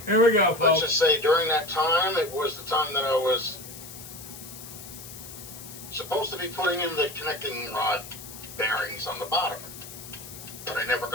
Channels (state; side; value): noise; left; hiss, 14 dB below the sound